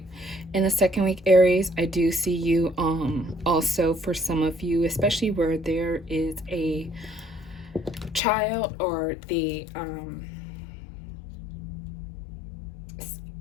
in the second week, Aries, I do see you also, for some of you, especially where there is a child, or the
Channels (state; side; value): drops out; right; at 8.2 s